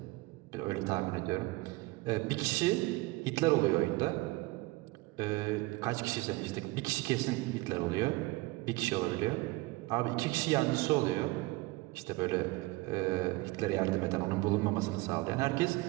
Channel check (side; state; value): left; quieter; 22.1 dB